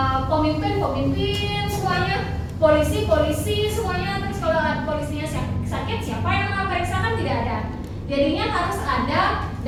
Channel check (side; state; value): both; identical; correlation 1.00